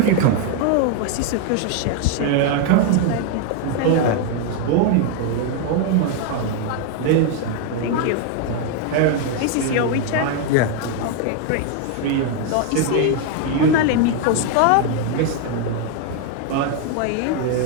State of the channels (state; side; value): different; both; correlation 0.01